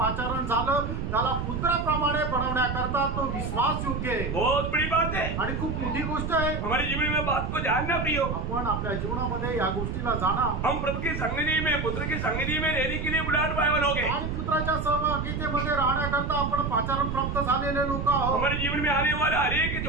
झालं त्याला पुत्राप्रमाणे बनवण्याकरता तो विश्वास योग्य आहे. बहुत बड़ी बात है आणि खूप मोठी गोष्ट आहे. हमारे जीवन में बात को जानना प्रियो. आपण आपल्या जीवनामध्ये या गोष्टीला जाणा. हम प्रभु की संगति में पुत्र की संगति में रहने के लिए बुलाहट पाए वाले लोग हैं. आणि पुत्राच्या सहभागितेमध्ये राहण्याकरता आपण पाचारण प्राप्त झालेले लोक आहोत. हमारे जीवन में आने वाला हर एक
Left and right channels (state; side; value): noise; right; rumble, 3 dB below the sound